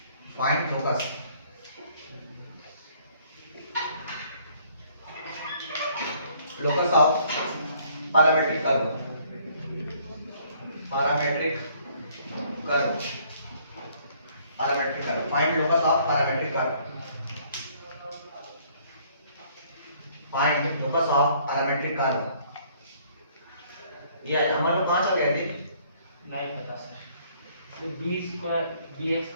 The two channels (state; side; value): inverted; both; correlation -0.61